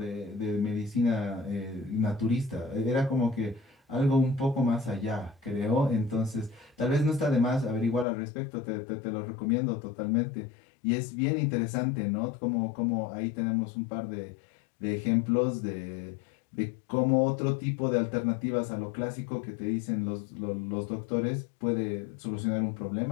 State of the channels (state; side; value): drops out; right; at 8.1 s